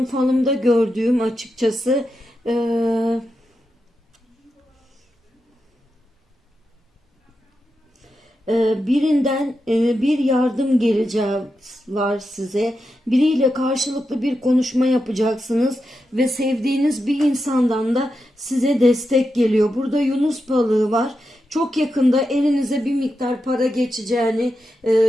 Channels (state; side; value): normal; both; correlation 0.88